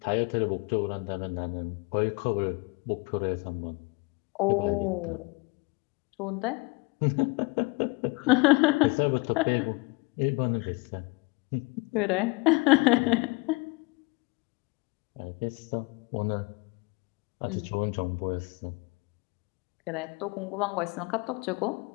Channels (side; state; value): right; quieter; 26.7 dB